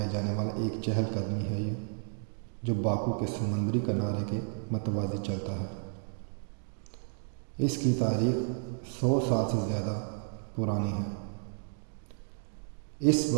جانے والا ایک چہل قدمی ہے یہ، جو باکو کے سمندری کنارے کے متوازی چلتا ہے۔ اس کی تاریخ 100 سال سے زیادہ پرانی ہے۔ اس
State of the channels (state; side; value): silent; left; 56 dB below the other